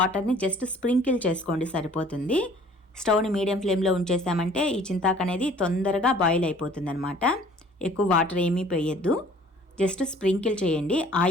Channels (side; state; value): both; normal; correlation 0.53